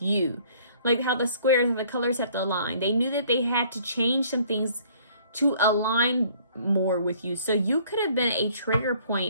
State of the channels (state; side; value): inverted; both; correlation -0.58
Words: you. Like how the squares and the colors have to align. They knew that they had to change some things to align more with you. So you could have been a trigger